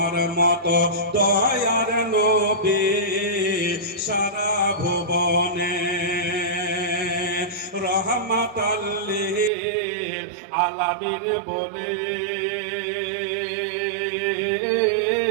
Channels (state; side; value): drops out; left; at 9.5 s